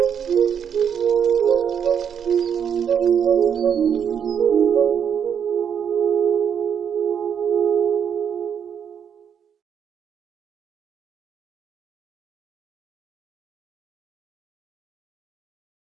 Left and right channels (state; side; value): quieter; left; 7.9 dB